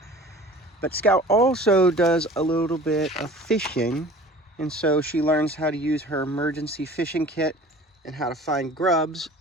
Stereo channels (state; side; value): normal; both; correlation 0.44